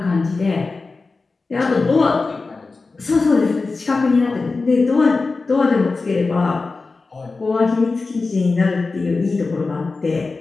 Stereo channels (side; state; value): right; quieter; 3.9 dB